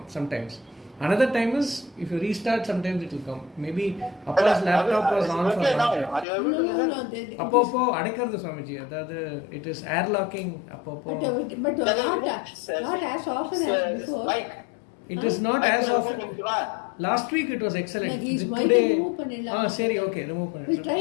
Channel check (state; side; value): drops out; right; at 6.2 s